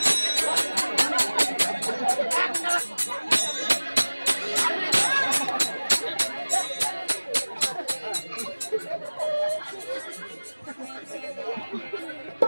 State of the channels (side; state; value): both; inverted; correlation -1.00